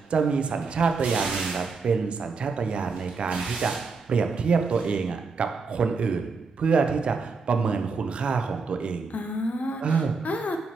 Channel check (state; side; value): quieter; left; 4.5 dB